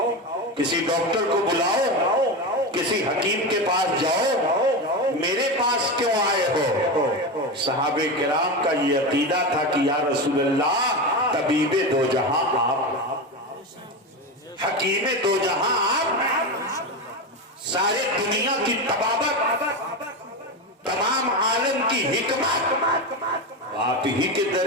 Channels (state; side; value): normal; both; correlation 0.18